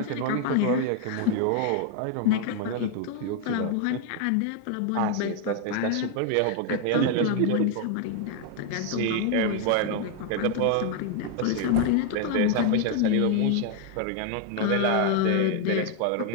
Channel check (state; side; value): different; both; correlation 0.00